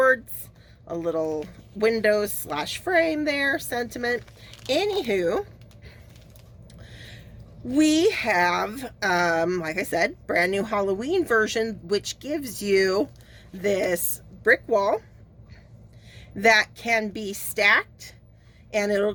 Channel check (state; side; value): identical; both; correlation 1.00